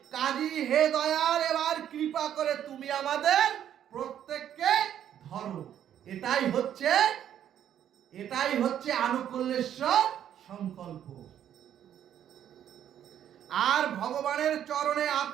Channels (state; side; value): quieter; left; 10.2 dB